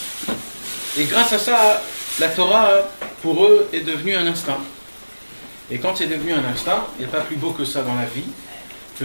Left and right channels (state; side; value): inverted; both; correlation -1.00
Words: Et grâce à ça, la Torah, pour eux, est devenue un instinct. Et quand c'est devenu un instinct, il n'y a pas plus beau que ça dans la vie,